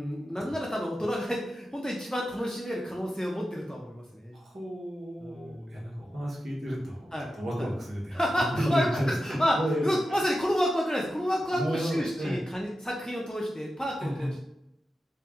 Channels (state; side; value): normal; both; correlation 0.91